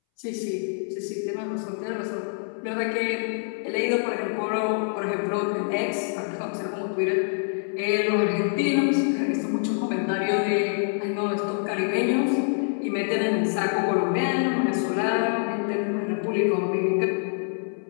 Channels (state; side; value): silent; right; 61 dB below the other